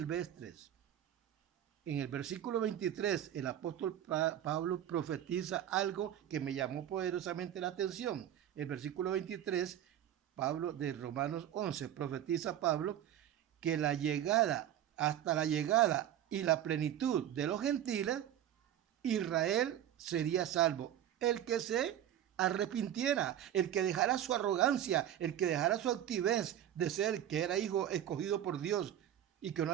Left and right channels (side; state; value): left; quieter; 11.0 dB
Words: En el versículo 23, el apóstol Pablo profetiza algo que me llamó poderosamente la atención. El versículo 23, Pablo de Romanos 11, profetiza Pablo que hasta la llegada y la plenitud de los gentiles, Israel sería salvo. El que se arrepintiera, el que dejara su arrogancia, el que dejara su altivez de ser que era hijo escogido por Dios y que no